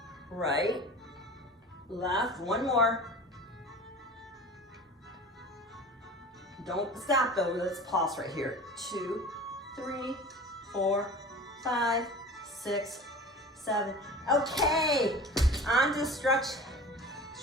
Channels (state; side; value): normal; both; correlation 0.38